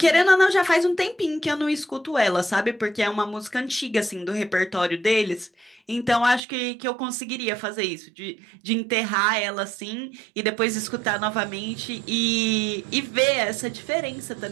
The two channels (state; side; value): drops out; left; at 6.4 s